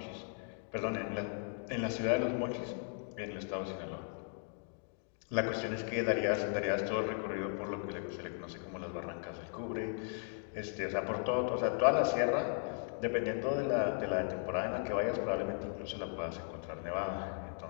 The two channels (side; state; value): right; silent; 53 dB below the other